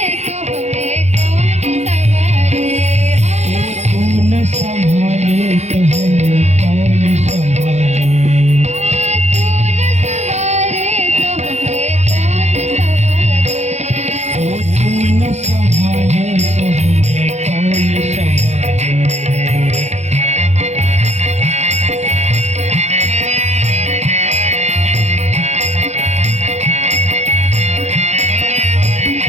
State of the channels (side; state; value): left; late; 0.32 ms